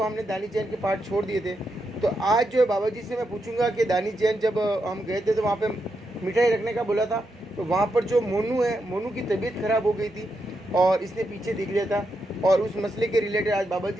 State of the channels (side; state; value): both; normal; correlation 0.83